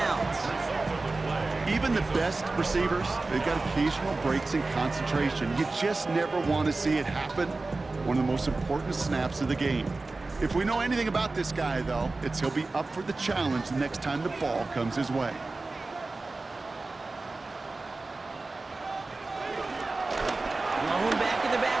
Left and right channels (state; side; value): quieter; left; 3.4 dB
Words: Even the best receivers, they've got occasional breaks in concentration. You just never want to see it happen. One of the most important snaps of the game. If we know anything about this guy, though, it's he'll be up for the challenge the next time the ball comes his way. Lone back in the